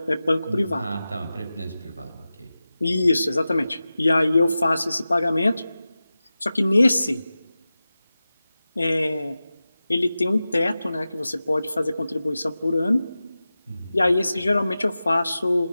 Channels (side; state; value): both; inverted; correlation -0.95